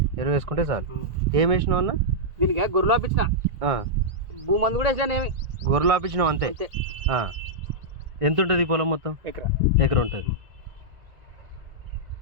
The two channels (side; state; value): left; late; 1.4 ms